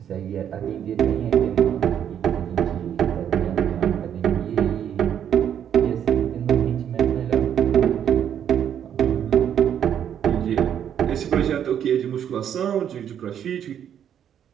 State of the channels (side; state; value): left; quieter; 9.3 dB